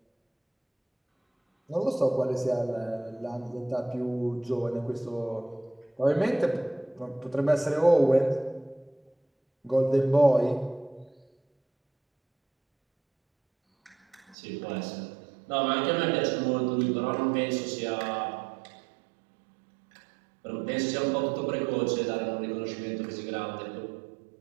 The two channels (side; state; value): left; drops out; at 14.4 s